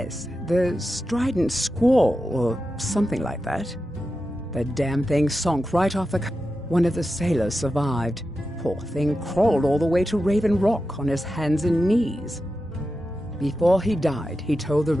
the Strident Squall, or something like that. The damn thing sunk right off the... One of the sailors survived. Poor thing crawled all the way to Raven Rock on his hands and knees. Before he died, he told the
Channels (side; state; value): both; normal; correlation 0.91